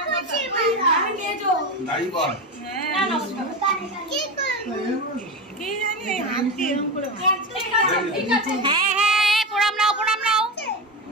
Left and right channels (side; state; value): both; normal; correlation 0.20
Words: দাঁড়িয়ে বল। কি জানি এই হাত দিয়ে এরকম করে মার। ঠিক আছে। হ্যাঁ হ্যাঁ, প্রণাম নাও, প্রণাম নাও।